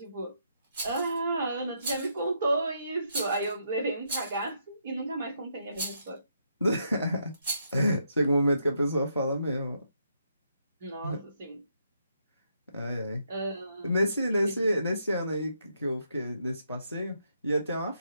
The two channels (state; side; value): inverted; both; correlation -0.77